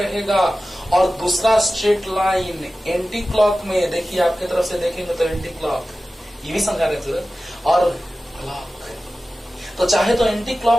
और दूसरा स्ट्रेट लाइन एंटी क्लॉक में, देखिए आपकी तरफ से देखेंगे तो एंटी क्लॉक, ये भी समझा देते, और क्लॉक, तो चाहे तो एंटी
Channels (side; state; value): both; normal; correlation 0.95